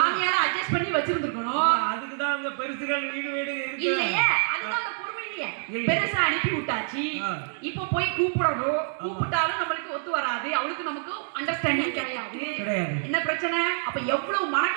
அட்ஜஸ்ட் பண்ணி வச்சிருந்துக்கணும். அதுக்கு தான் அங்க பெருசுகள் வீடு இருக்கு இல்லையே, அதுதான் அந்த பொறுமை இல்லையே. பெருசா அனுப்பி விட்டாச்சு, இப்போ போய் கூப்பிடணும். கூப்பிட்டாலும் நம்மளுக்கு ஒத்து வராது, அவளுக்கு நமக்கு அண்டர்ஸ்டாண்டிங் கிடையாது. என்ன பிரச்சனை? அப்ப எவ்வளவு மன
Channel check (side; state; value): left; silent; digital silence